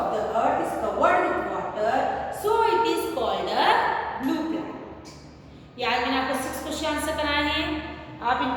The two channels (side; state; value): both; identical; correlation 1.00